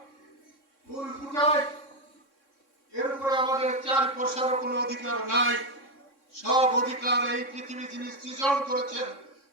ফুল ফুটাই, এর উপরে আমাদের 4 পয়সারও কোনো অধিকার নাই। সব অধিকার এই পৃথিবী যিনি সৃজন করেছেন,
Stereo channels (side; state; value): right; late; 3.6 ms